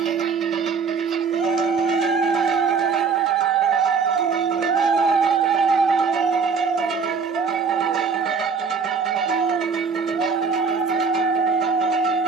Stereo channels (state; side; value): quieter; left; 5.4 dB